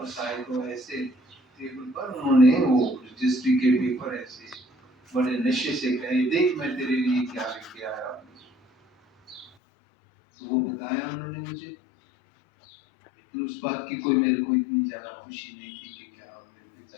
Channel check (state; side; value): drops out; right; at 9.5 s